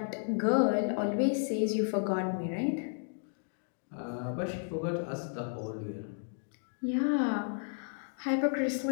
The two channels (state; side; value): silent; right; digital silence